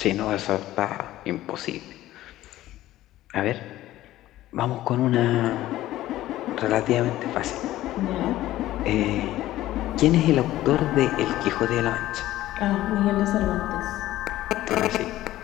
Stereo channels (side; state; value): right; quieter; 15.0 dB